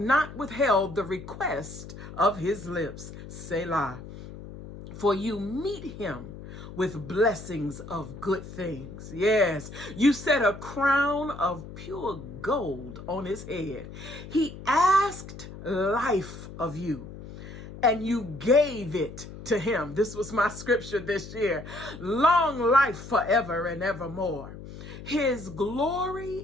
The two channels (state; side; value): noise; left; hum, 13 dB below the sound